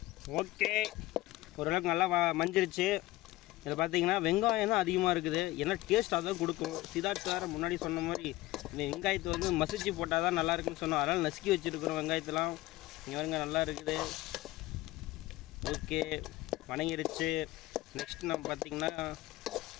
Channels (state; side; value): quieter; right; 18.1 dB